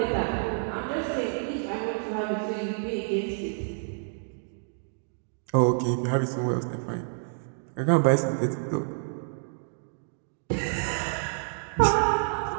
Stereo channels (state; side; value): silent; left; digital silence